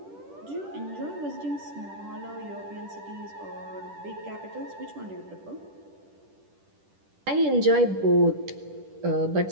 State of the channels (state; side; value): late; left; 10 ms